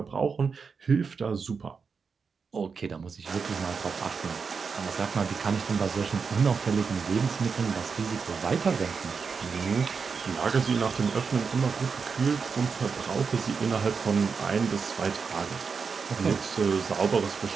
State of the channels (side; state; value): left; quieter; 5.4 dB